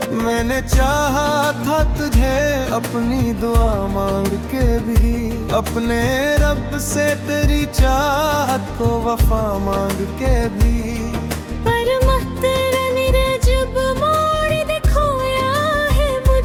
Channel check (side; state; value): both; identical; correlation 1.00